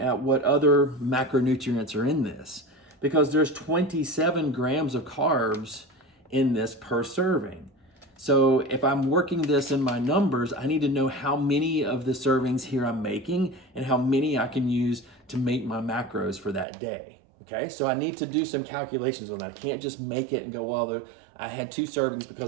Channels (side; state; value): left; drops out; at 16.7 s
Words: what other macronutrients are in this, because there's 27 grams of carbs in this per serving. So if I'm working this in my numbers, I need to know how many of the servings here I'm making and how many I can use to make my macros for that day. Okay, so I need to do some calculations on that. I can't just make it and go, well, I had 2 servings